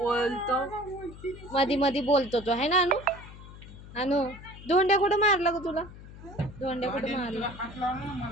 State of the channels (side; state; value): left; noise; hum, 16 dB below the sound